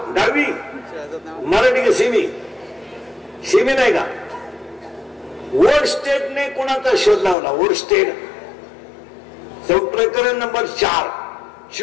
10वी मराठी का? शिमी नाही का? वोरस्टेडने कोणाचा शोध लावला? वोरस्टेड. प्रकरण नंबर 4,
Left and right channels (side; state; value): right; drops out; at 7.4 s